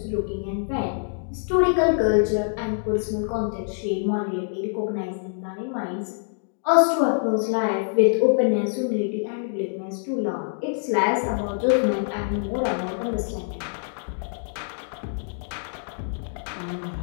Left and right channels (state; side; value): silent; right; digital silence